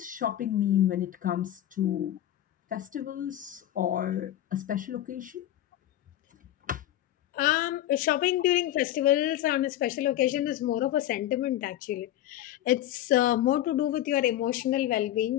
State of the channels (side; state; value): right; quieter; 13.0 dB